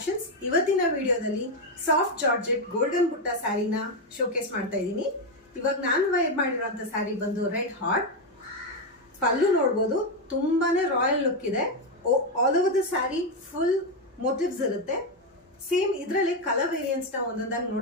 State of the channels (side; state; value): both; normal; correlation 0.06